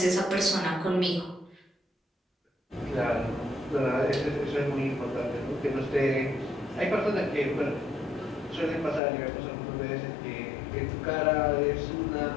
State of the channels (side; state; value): right; drops out; at 9.0 s